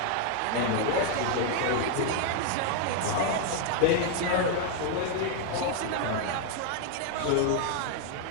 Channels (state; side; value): different; both; correlation 0.00